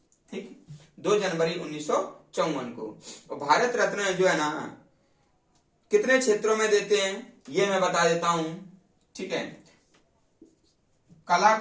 ठीक, 2 जनवरी 1954 को। और भारत रत्न जो है ना, कितने क्षेत्रों में देते हैं ये मैं बता देता हूं। ठीक है, कला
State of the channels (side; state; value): both; identical; correlation 1.00